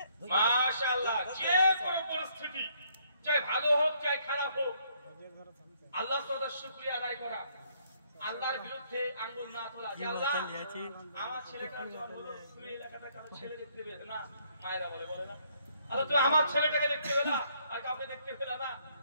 মাশাআল্লাহ, যে কোনো পরিস্থিতি, চাই ভালো হোক চাই খারাপ হোক, আল্লাহ তাআলার শুকরিয়া আদায় করা, আল্লাহর বিরুদ্ধে আঙ্গুল না তোলা। যে আল্লাহ, আমার ছেলেটার জন্ম হলো, তুমি এলাকাটা কারো ছেলে দেখতে পেলে না, মায়েরা বলে না, আল্লাহ তুমি আমার ছেলেটাকে দেখতে পেলে না, আর কাউকে দেখতে পেলে না,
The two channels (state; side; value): inverted; both; correlation -0.68